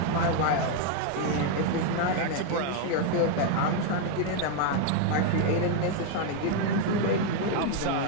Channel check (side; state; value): both; different; correlation 0.00